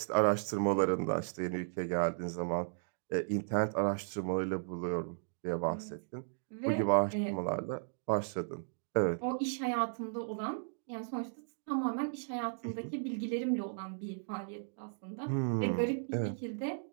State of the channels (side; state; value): left; silent; digital silence